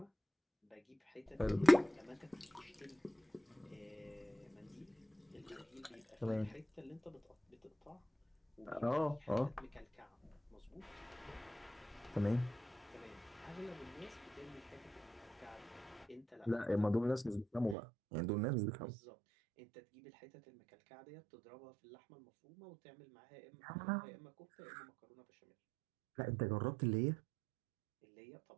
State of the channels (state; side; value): drops out; left; at 17.8 s